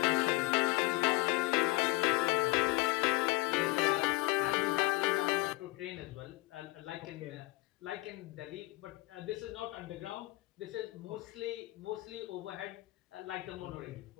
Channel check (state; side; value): quieter; right; 20.5 dB